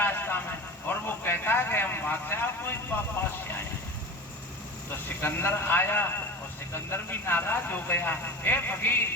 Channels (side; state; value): both; normal; correlation 0.32